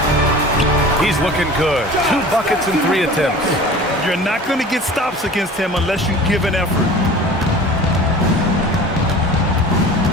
He's looking good. 2 buckets and 3 attempts. You're not going to get stops against him unless you give an effort.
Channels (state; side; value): normal; both; correlation 0.41